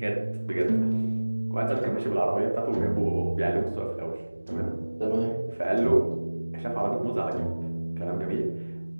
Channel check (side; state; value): both; inverted; correlation -1.00